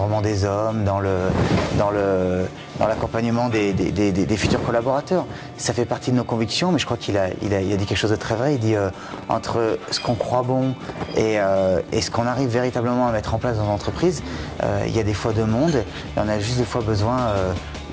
des hommes, dans l'accompagnement des futurs collaborateurs. Ça fait partie de nos convictions, mais je crois qu'il a dit quelque chose de très vrai. Il dit entre ce qu'on croit bon et ce qu'on arrive véritablement à mettre en place dans l'entreprise, il y a des fois deux mondes et on a juste des fois besoin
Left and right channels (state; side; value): identical; both; correlation 1.00